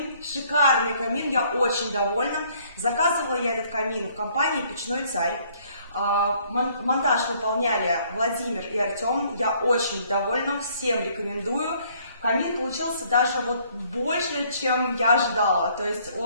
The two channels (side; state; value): both; inverted; correlation -0.63